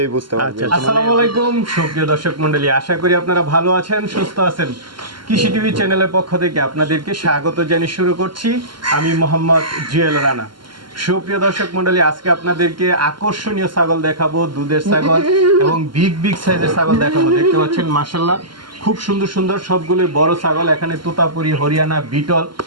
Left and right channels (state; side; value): late; left; 0.72 ms